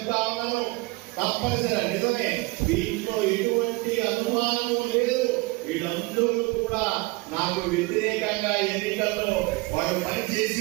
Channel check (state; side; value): quieter; left; 23.7 dB